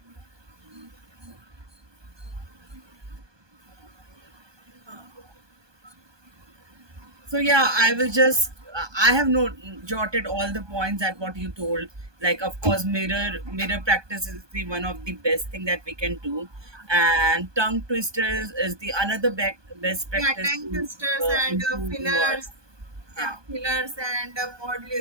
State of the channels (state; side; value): late; left; 1.2 ms